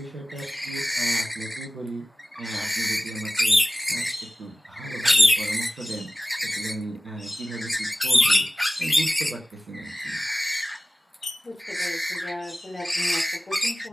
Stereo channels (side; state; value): both; normal; correlation 0.96